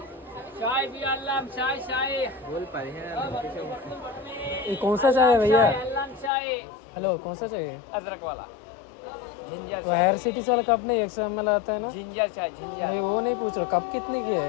चाय भी अल्लाम चाय चाय बोल पाए हैं। कौन सा चाय है भैया? हेलो, कौन सा चाहिए? अदरक वाला जिंजर तो हेयर सिटीज वाला कप नहीं 100 ml आता है ना? जिंजर चाय, जिंजर नहीं वो नहीं पूछ रहा, कप कितने की है?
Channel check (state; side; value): drops out; right; at 6.3 s